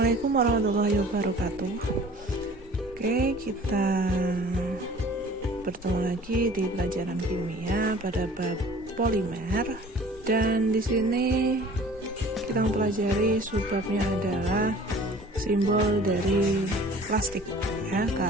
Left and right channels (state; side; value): normal; both; correlation 0.47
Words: warahmatullahi wabarakatuh. Oke, kita bertemu lagi di pelajaran kimia pada bab polimer, dan di sini kita mempelajari subbabnya adalah simbol dari plastik ya,